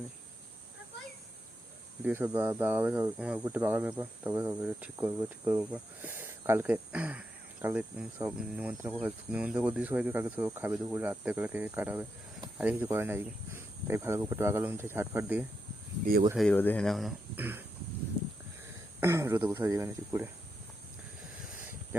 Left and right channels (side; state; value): both; normal; correlation 0.84